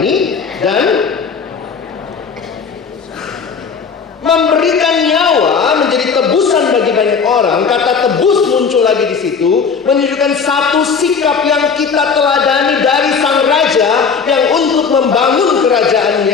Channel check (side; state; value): right; quieter; 5.8 dB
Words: dan memberikan nyawa menjadi tebusan bagi banyak orang. Kata tebus muncul lagi di situ, menunjukkan satu sikap yang kita teladani dari sang raja yang untuk membangun